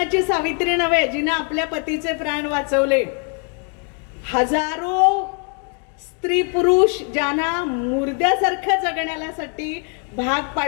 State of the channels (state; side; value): quieter; right; 37.0 dB